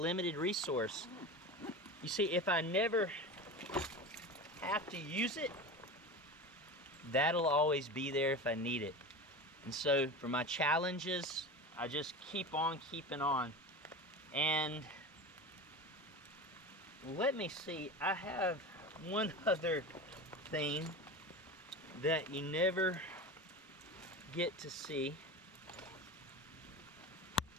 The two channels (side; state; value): both; normal; correlation 0.29